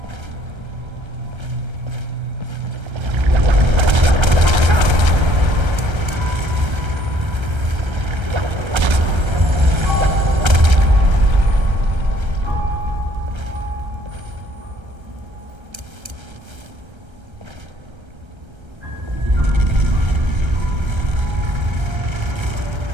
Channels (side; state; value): left; late; 1.3 ms